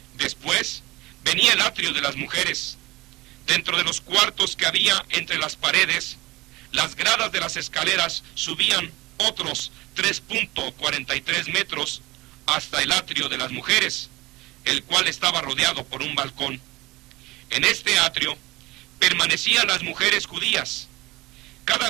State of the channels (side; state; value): left; quieter; 20.7 dB